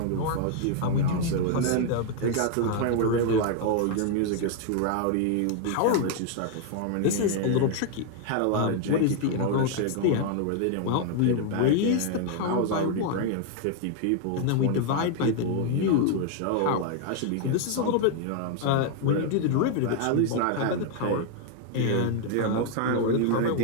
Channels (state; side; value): different; both; correlation 0.00